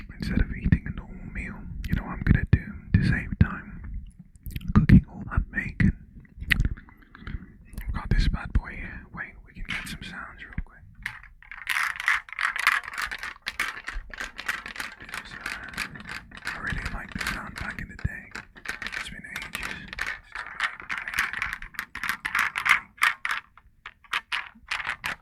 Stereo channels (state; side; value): identical; both; correlation 1.00